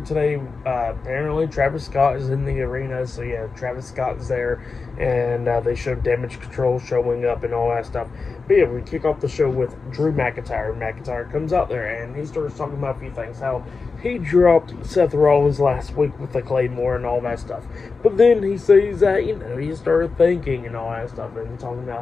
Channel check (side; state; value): right; quieter; 4.4 dB